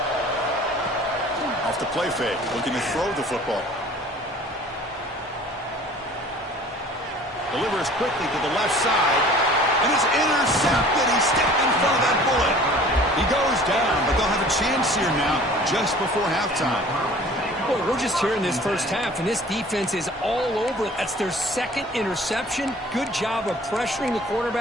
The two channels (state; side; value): normal; both; correlation 0.48